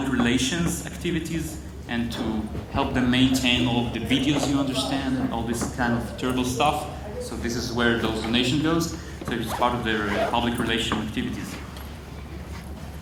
relations activities and to help them maintain all of the videos, you understand, and all this kind of terrible stuff. So this is where those donation goes. So it's part of their public relation activities.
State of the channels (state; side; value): identical; both; correlation 1.00